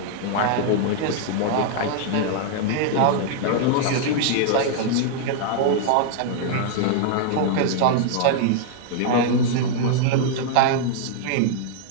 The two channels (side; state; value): both; different; correlation -0.01